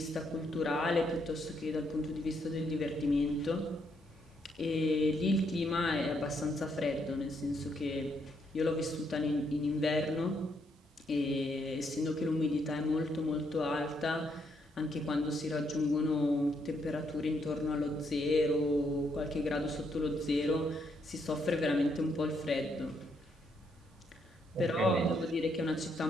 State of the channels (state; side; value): normal; both; correlation 0.75